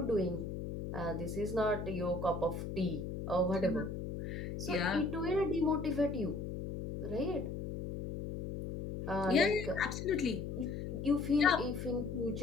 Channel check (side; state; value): left; noise; hum, 6 dB below the sound